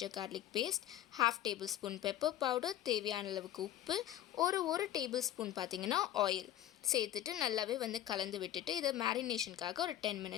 garlic paste, 1/2 tablespoon pepper powder, தேவையான அளவுக்கு உப்பு, ஒரு டேபிள்ஸ்பூன் பார்த்தீங்கன்னா ஆயில் சேர்த்துட்டு நல்லாவே வந்து கலந்து விட்டுட்டு இதை மேரினேஷனுக்காக ஒரு 10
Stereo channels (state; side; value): quieter; right; 12.6 dB